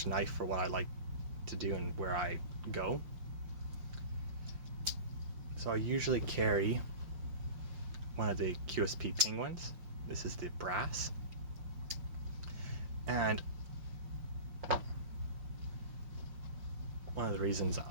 knife for what I like to do and where I go. So I usually carry one of the QSP Penguins. This is the brass. And one of the reasons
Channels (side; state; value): left; late; 5.4 ms